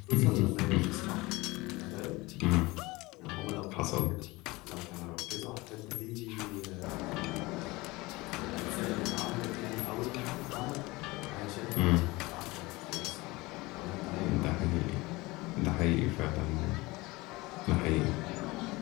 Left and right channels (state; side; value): quieter; right; 22.1 dB